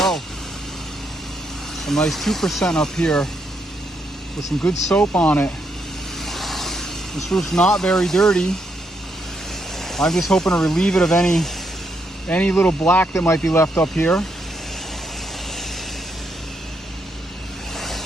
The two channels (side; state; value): both; normal; correlation 0.77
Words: A nice 2% up here with some good soap on it. This roof's not very dirty. I'm just hoping to relieve it of any any little black that might be left up here.